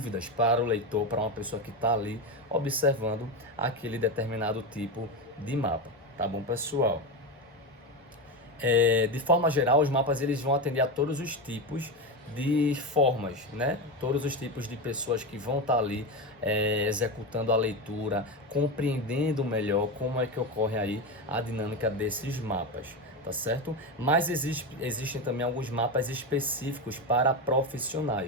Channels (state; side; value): normal; both; correlation 0.17